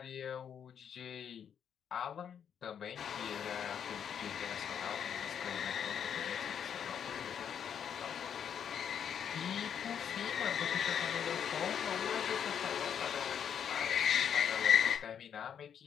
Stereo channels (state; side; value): quieter; right; 8.2 dB